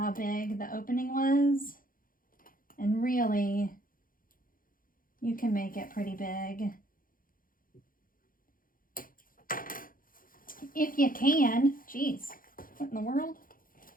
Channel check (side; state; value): right; late; 0.41 ms